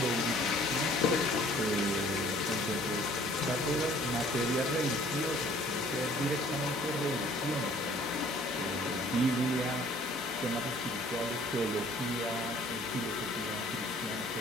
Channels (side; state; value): both; normal; correlation 0.55